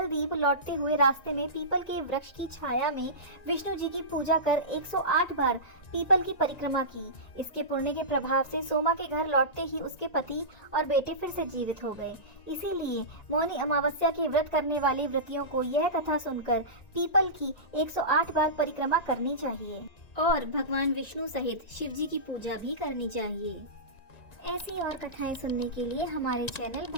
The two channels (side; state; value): right; late; 1.9 ms